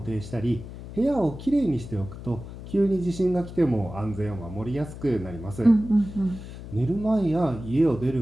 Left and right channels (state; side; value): noise; left; hum, 12 dB below the sound